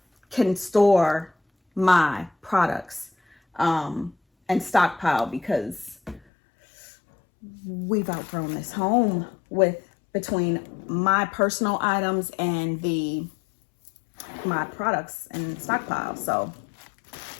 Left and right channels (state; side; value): drops out; right; at 6.2 s